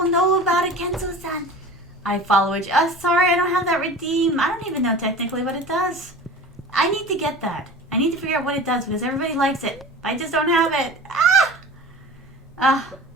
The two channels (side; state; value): both; normal; correlation 0.37